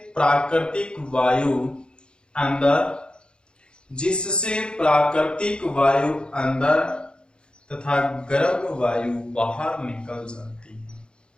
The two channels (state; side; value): late; right; 0.051 ms